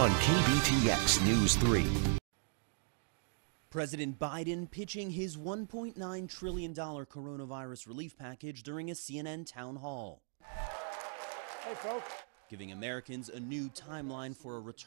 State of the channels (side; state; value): left; silent; 53 dB below the other